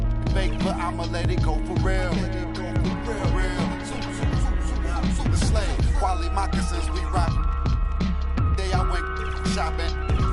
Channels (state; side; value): identical; both; correlation 1.00